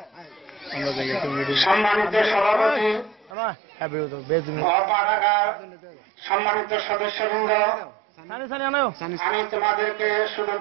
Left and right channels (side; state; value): left; drops out; at 3.3 s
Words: সম্মানিত সভাপতি অপাড়াগার সম্মানিত সদস্যবৃন্দ, আমি তোমাদেরকে শুধু